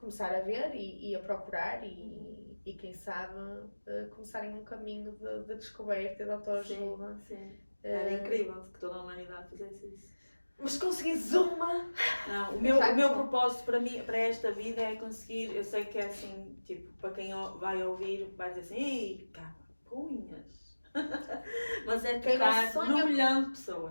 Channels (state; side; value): inverted; both; correlation -1.00